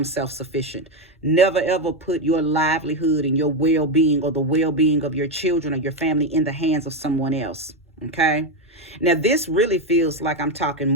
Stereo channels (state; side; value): normal; both; correlation 0.09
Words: self-sufficient. Never ever put your livelihood and your well-being or the well-being of your children or your family in the hands of someone else. Okay. Now, this really feels like I'm talking